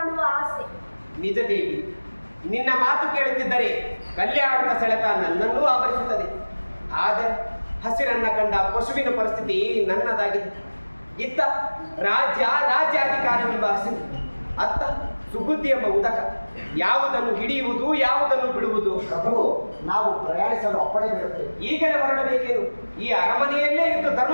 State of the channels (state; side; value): inverted; both; correlation -1.00